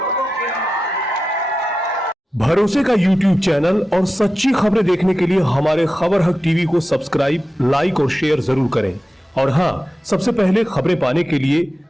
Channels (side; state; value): both; normal; correlation 0.92